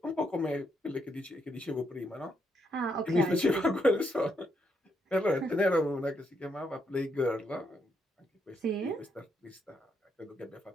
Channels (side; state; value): both; normal; correlation 0.77